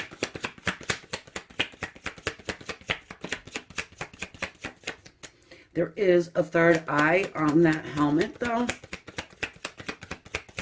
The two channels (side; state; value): both; identical; correlation 1.00